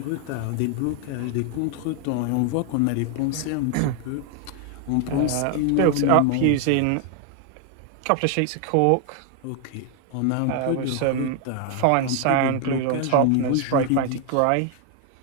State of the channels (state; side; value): different; both; correlation 0.00